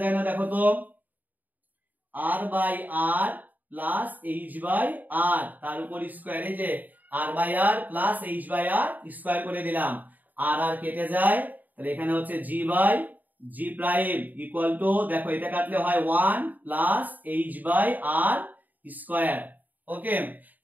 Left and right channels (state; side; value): late; left; 0.083 ms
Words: যায় না, দেখো তো r by r plus h by r তার উপর স্কয়ার, এই যে r by r plus h by r square করে দিলাম, r আর কেটে যায়, তাহলে এখানে হচ্ছে g by g prime equal to, দেখো এটা কাটলে হয় 1 plus h by r square. Okay